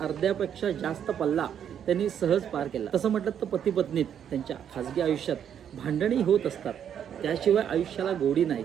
जास्त पल्ला त्यांनी सहज पार केला. तसं म्हटलं तर पती पत्नीत त्यांच्या खाजगी आयुष्यात भांडणी होत असतात, त्याशिवाय आयुष्याला गोडी नाही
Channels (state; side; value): quieter; left; 8.9 dB